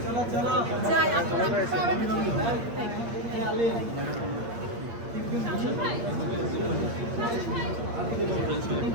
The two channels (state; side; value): late; left; 8.7 ms